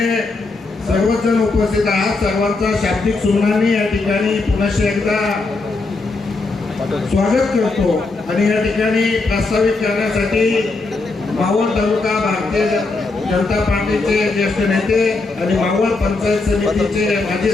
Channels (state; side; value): quieter; right; 3.6 dB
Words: सर्वच जण उपस्थित आहात. सर्वांचा शाब्दिक सुमनांनी या ठिकाणी पुनश्च एकदा स्वागत करतो आणि या ठिकाणी प्रस्तावित करण्यासाठी मावळ तालुका भारतीय जनता पार्टीचे ज्येष्ठ नेते आणि मावळ पंचायत समितीचे माजी